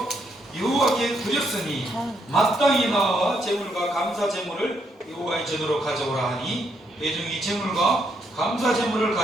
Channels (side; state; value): both; normal; correlation 0.76